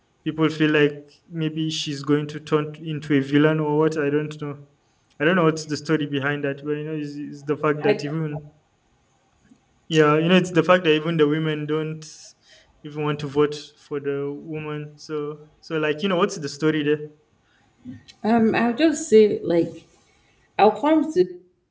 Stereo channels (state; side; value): identical; both; correlation 1.00